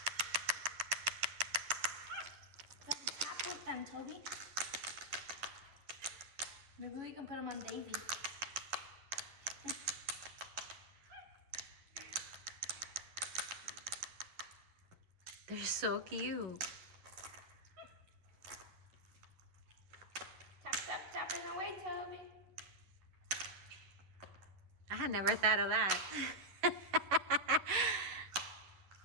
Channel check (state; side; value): late; left; 11 ms